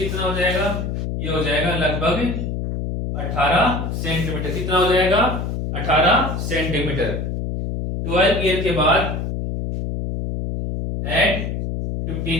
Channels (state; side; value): noise; left; hum, 3 dB below the sound